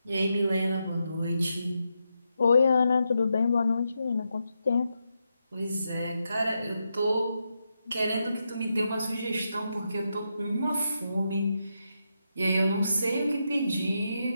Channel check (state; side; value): inverted; both; correlation -0.85